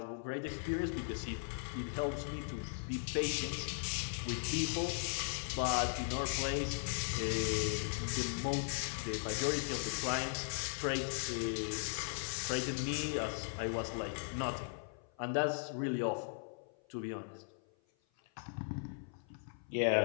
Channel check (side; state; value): right; silent; 52 dB below the other